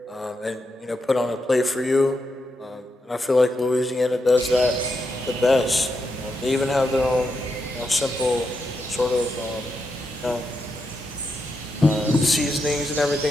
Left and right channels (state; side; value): normal; both; correlation 0.84